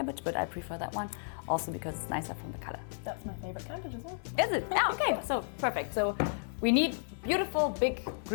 but I prefer that one also because it's nicer from the color. That's my favorite cabbage as well. Is it? Yeah, okay, so perfect. So we need beautiful big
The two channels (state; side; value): silent; right; 56 dB below the other